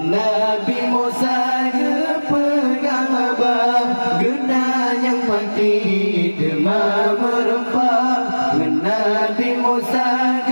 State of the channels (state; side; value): inverted; both; correlation -1.00